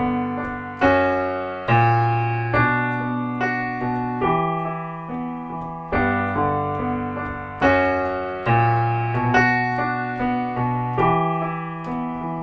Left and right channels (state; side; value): identical; both; correlation 1.00